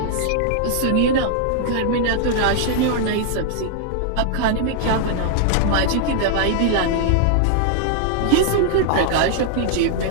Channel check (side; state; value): both; different; correlation -0.01